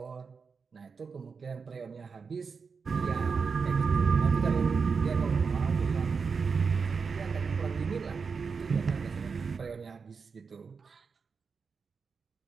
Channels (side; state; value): left; quieter; 5.3 dB